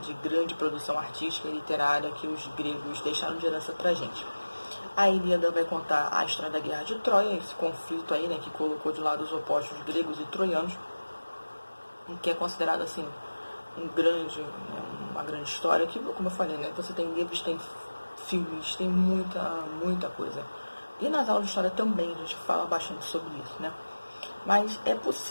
grande produção artística e literária que os gregos deixaram de herança pra gente. A Ilíada vai contar a história da Guerra de Troia, esse conflito aí, né, que colocou de lado os opostos gregos e troianos, que é considerado assim uma grande história, que, como eu falei, né, você tem livros, tem filmes, tem muita coisa. E nas aulas de história também a gente fala bastante sobre isso, né? Mas é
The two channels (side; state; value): both; inverted; correlation -1.00